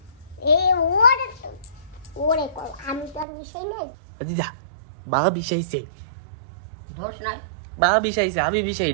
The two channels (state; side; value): drops out; left; at 3.2 s